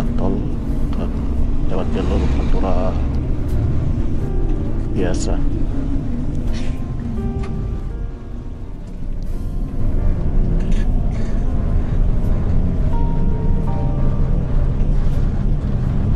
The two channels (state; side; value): identical; both; correlation 1.00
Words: tol dan lewat jalur Pantura biasa.